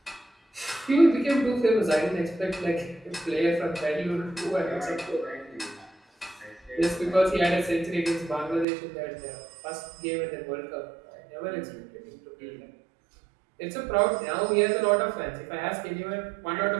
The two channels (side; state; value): left; drops out; at 8.7 s